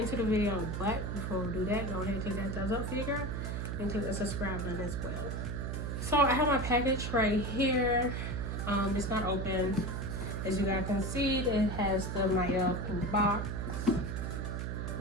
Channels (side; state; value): right; noise; hum, 3 dB below the sound